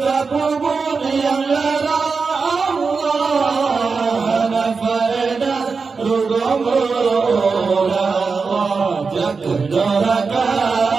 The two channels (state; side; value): quieter; left; 4.8 dB